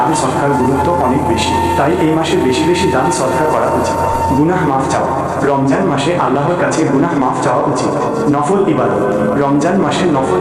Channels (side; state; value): both; identical; correlation 1.00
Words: সদকার গুরুত্ব অনেক বেশি, তাই এই মাসে বেশি বেশি দান সদকা করা উচিত। গুনাহ মাফ চাওয়া। রমজান মাসে আল্লাহর কাছে গুনাহ মাফ চাওয়া উচিত। নফল ইবাদত। রমজান মাসে নফল